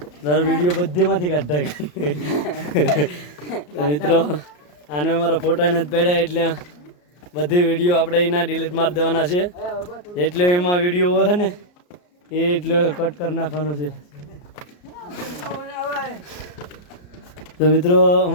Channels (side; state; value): right; late; 34 ms